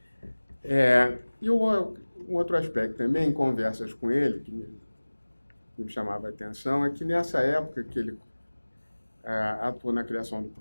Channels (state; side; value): inverted; both; correlation -1.00